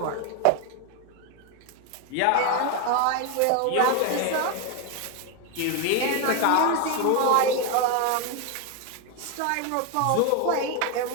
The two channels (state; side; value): different; both; correlation 0.01